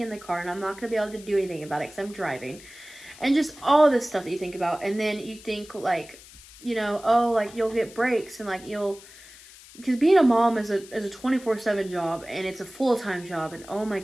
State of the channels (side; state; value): left; noise; hiss, 20 dB below the sound